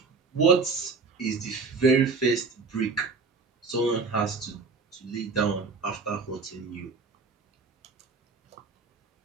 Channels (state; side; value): quieter; left; 4.5 dB